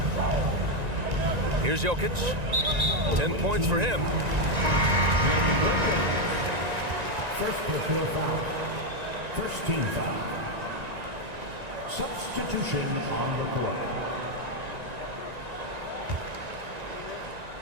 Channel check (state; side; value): late; left; 1.9 ms